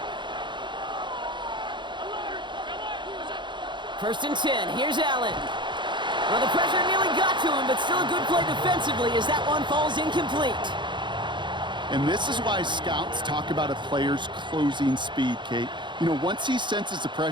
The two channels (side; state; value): left; late; 0.23 ms